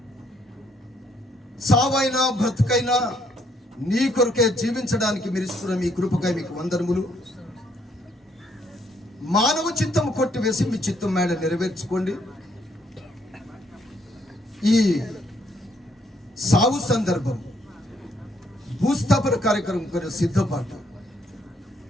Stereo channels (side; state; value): both; normal; correlation 0.70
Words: సావైనా బ్రతుకైనా నీ కొరకే జీవించడానికి మీరు ఇస్తున్న మీ కృపకై మీకు వందనములు. మానవ చిత్తము కొట్టివేసి మీ చిత్తం మేడ నెరవేర్చుకోండి. ఈ సావు సందర్భం, భూస్థాపన కార్యక్రమం కొన్ని సిద్ధపాటు